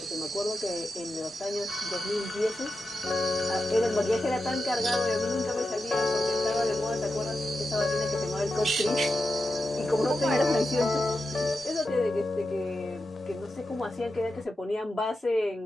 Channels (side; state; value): both; normal; correlation 0.90